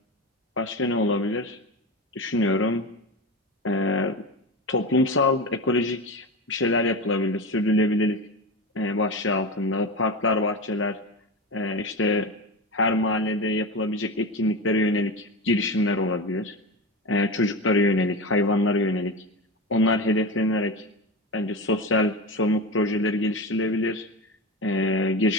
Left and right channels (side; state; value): both; normal; correlation 0.22